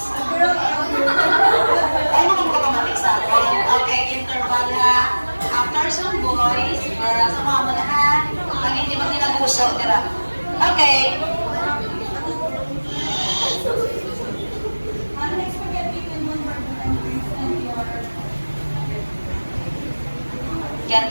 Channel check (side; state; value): both; inverted; correlation -1.00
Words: Ay, mga magkakamatik sa akin. Okay, interval ha. After some boys, girls, sumama na ha. Pag hindi mo tinaguso, tira. Okay. Get